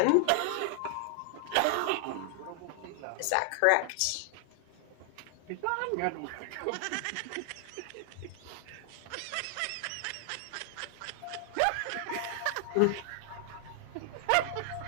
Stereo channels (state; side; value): different; both; correlation 0.00